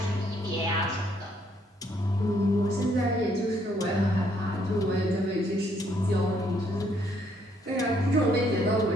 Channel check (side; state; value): both; normal; correlation 0.69